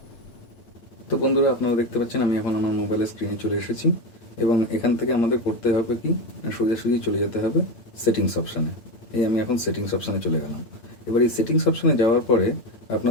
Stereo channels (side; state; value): right; late; 8.8 ms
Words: তো বন্ধুরা, আপনারা দেখতে পাচ্ছেন আমি এখন আমার মোবাইলের স্ক্রিনে চলে এসেছি, এবং এখান থেকে আমাদের করতে হবে কি, সোজাসুজি চলে যেতে হবে সেটিংস অপশানে। এই আমি এখন সেটিংস অপশানে চলে গেলাম। এবার এই সেটিংস অপশানে যাওয়ার পরে